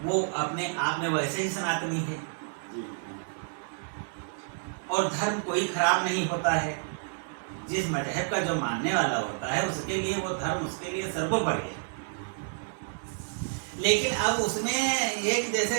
वो अपने आप में वैसे ही सनातनी है। और धर्म कोई खराब नहीं होता है। जिस मजहब का जो मानने वाला होता है, उसके लिए वो धर्म उसके लिए सर्वोपरि है। लेकिन अब उसमें एक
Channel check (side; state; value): left; silent; digital silence